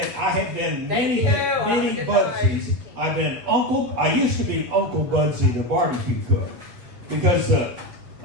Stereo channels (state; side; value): late; left; 7.9 ms